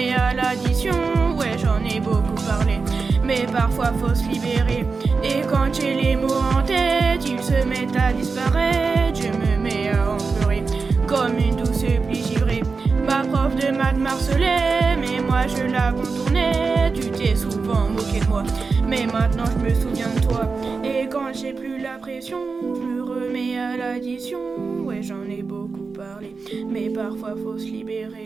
à l'addition. Ouais, j'en ai beaucoup parlé, mais parfois faut se libérer. Et quand j'ai les mots en tête, ils se mettent à disparaître. Je me mets à en pleurer, comme une douce pluie givrée. Ma prof de maths m'harcelait, mais moi je la contournais. Tu t'es souvent moqué de moi, mais maintenant je me souviens de toi. Et quand j'ai plus la pression, je me remets à l'addition. Ouais, j'en ai beaucoup parlé, mais parfois faut se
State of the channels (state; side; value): quieter; left; 4.6 dB